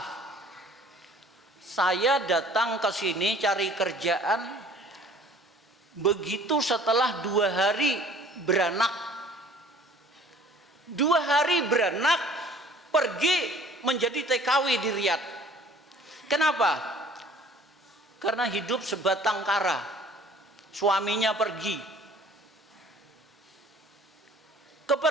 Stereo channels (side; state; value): both; normal; correlation 0.52